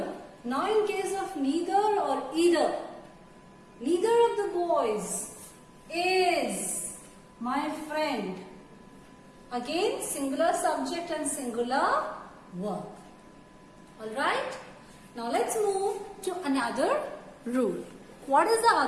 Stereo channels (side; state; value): both; identical; correlation 1.00